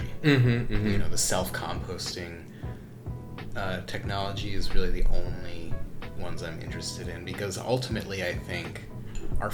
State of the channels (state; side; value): identical; both; correlation 1.00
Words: You know, the self-composting technology is really the only ones I'm interested in, because ultimately I think our